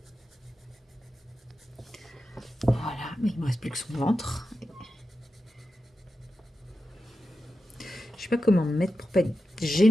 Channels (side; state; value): both; normal; correlation 0.91